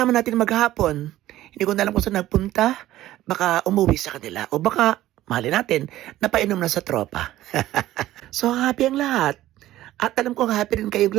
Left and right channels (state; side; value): quieter; left; 14.6 dB